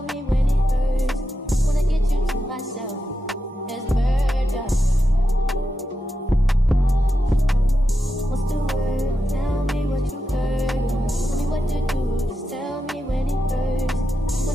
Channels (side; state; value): both; normal; correlation 0.88